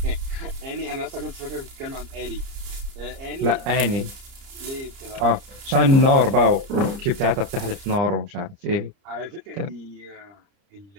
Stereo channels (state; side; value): late; left; 30 ms